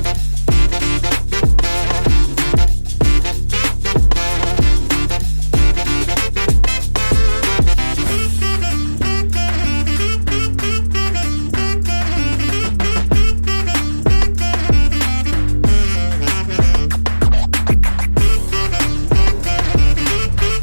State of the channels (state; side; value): inverted; both; correlation -1.00